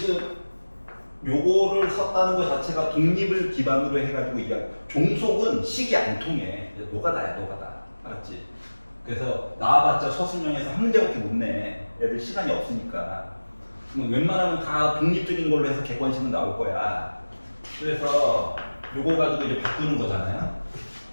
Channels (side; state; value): both; inverted; correlation -1.00